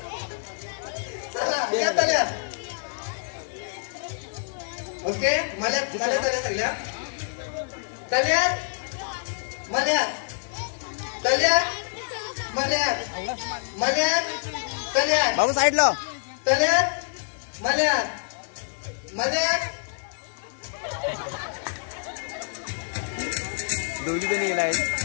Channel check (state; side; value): silent; right; digital silence